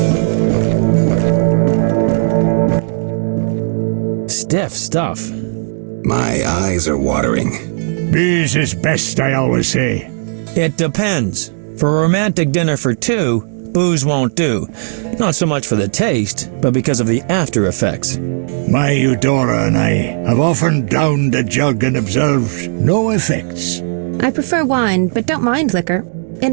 Stiff stuff. My eyes are watering. Booze is best, I always say. It depends. For a romantic dinner for two, booze won't do. Not so much for the taste, but because of the after effects. My Eudora and I have often downed a jug and observed no effects. I prefer wine, but don't mind liquor. In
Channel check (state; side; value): silent; left; digital silence